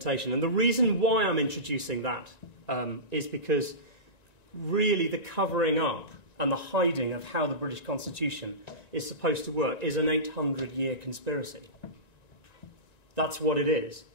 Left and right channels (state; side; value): late; right; 1.9 ms